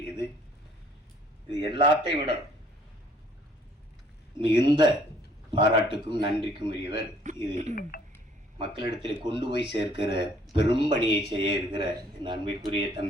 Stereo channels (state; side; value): normal; both; correlation 0.61